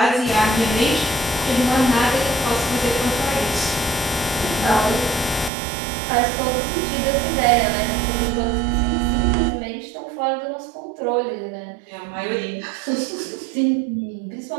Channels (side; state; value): left; drops out; at 5.5 s